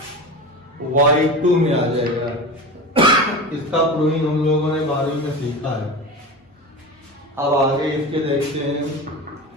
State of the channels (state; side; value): normal; both; correlation 0.28